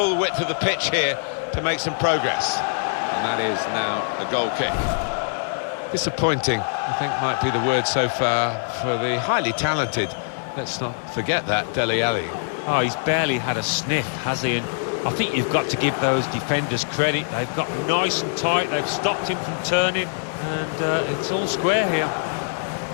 width of the pitch here to make some progress. And that is now a goal kick. Disappointing, I think, might be the word so far for the highly talented, let's not forget that, Dele Alli. Oh, he's barely had a sniff, has he? And I think you've got to give those defenders credit. They've got nice and tight, they've stopped him from turning, and it's all square here.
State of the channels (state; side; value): silent; right; digital silence